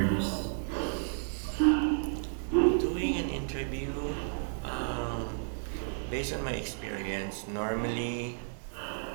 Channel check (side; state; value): left; silent; digital silence